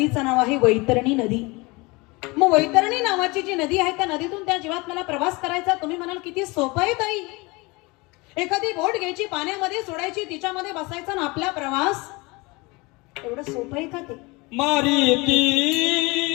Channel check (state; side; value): quieter; right; 25.0 dB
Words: नाव आहे वैतरणी नदी. मग वैतरणी नावाची जी नदी आहे त्या नदीतून त्या जीवात्म्याला प्रवास करायचा. तुम्ही म्हणाल किती सोपं आहे ताई, एखादी बोट घ्यायची, पाण्यामध्ये सोडायची, तिच्यामध्ये बसायचा ना आपला प्रवास. एवढं सोपं आहे का ते? मारीती